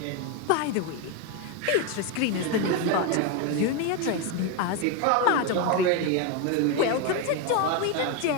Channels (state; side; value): different; both; correlation 0.02